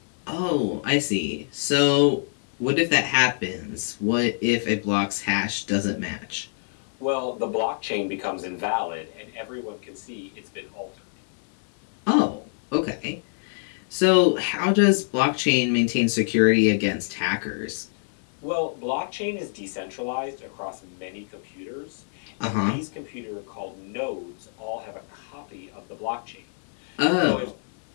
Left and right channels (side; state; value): right; silent; 58 dB below the other